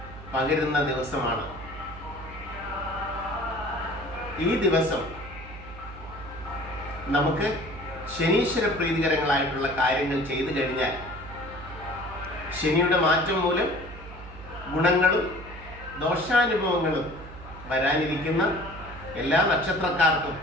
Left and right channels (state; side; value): noise; right; hum, 15 dB below the sound